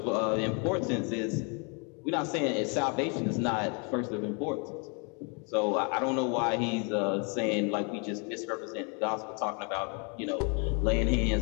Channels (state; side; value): quieter; right; 35.3 dB